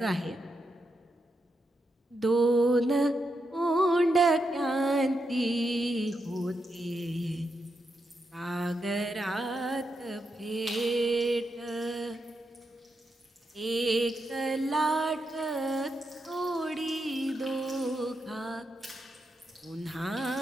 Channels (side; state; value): both; normal; correlation 0.84